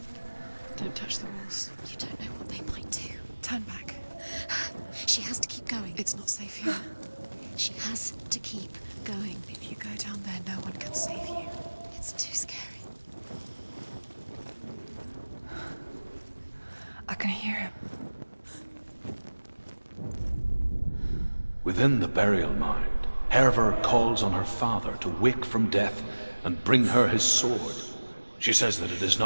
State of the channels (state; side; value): inverted; both; correlation -1.00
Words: Don't touch the walls. You don't know what they might do. Turn back. She has to keep going. It's not safe here. She has to keep going. If you go down there, no one can save you. It's too scary. I can hear him. Within the burial mound, Herva calls on her father to wake from death and bring her his sword. She says that it is